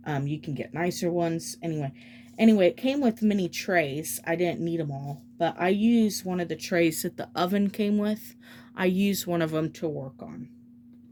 You can get nicer ones. Anyway, it came with mini trays. I didn't need them all, but I used one of the trays that the oven came with. I used one of them to work on.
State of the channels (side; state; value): both; identical; correlation 1.00